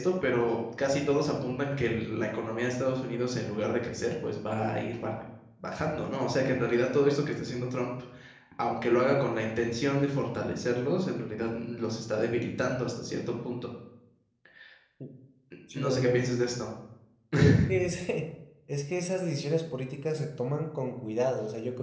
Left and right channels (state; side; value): identical; both; correlation 1.00